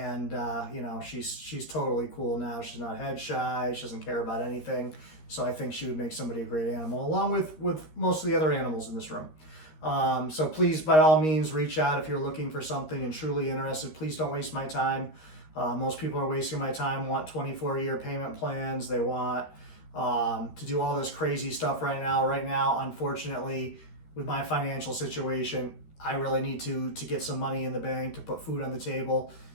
she's totally cool now. She's not head shy. She doesn't care about anything. So I think she would make somebody a great animal, along with most of the other animals in this room. So please, by all means, reach out if you're looking for something and truly interested. Please don't waste my time. Most people are wasting my time, want 24-year payment plans. They want to do all this crazy stuff right now. Right now, unfortunately, with my financial situation, I really need to get some money in the bank to put food on the table.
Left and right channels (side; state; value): right; late; 13 ms